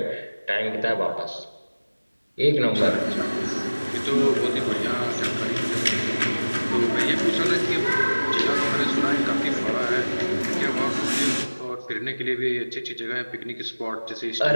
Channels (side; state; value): both; inverted; correlation -1.00